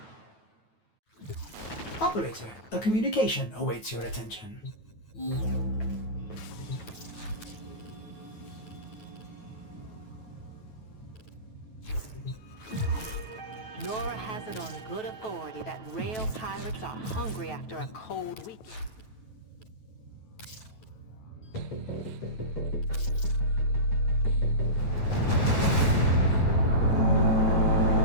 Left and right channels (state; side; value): late; right; 9.2 ms